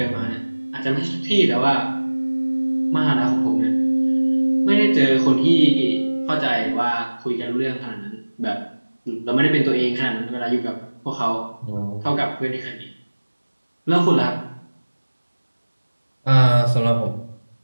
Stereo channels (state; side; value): inverted; both; correlation -1.00